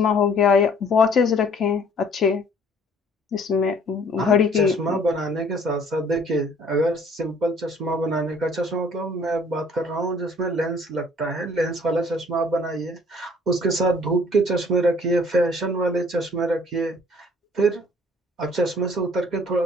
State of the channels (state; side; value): normal; both; correlation 0.57